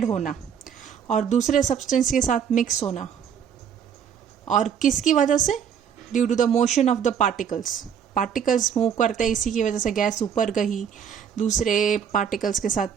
होना और दूसरे सब्सटेंस के साथ मिक्स होना। और किसकी वजह से? Due to the motion of the particles move करते हैं, इसी की वजह से गैस ऊपर गई, दूसरे पार्टिकल्स के साथ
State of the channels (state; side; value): quieter; left; 7.9 dB